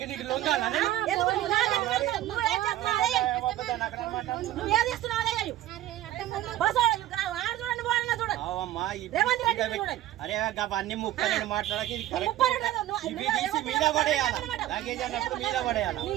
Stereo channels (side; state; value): left; quieter; 13.9 dB